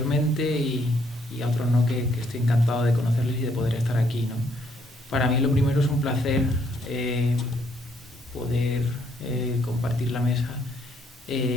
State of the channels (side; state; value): both; normal; correlation 0.70